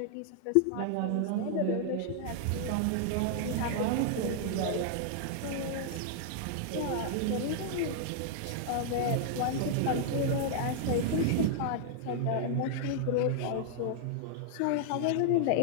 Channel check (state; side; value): different; both; correlation -0.01